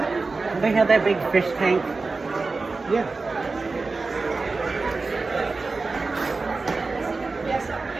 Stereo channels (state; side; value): quieter; left; 3.9 dB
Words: They have that big fish tank. Yeah.